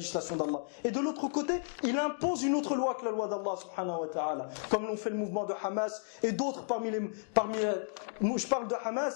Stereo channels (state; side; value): silent; right; digital silence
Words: d'Allah. Et de l'autre côté, il impose une autre loi que la loi d'Allah subhanahu wa ta'ala. Comme l'ont fait le mouvement de Hamas et d'autres je parle de